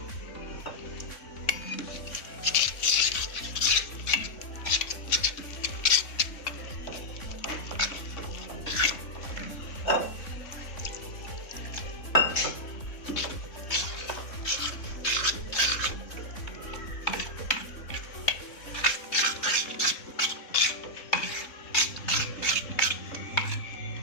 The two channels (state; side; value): late; right; 3.6 ms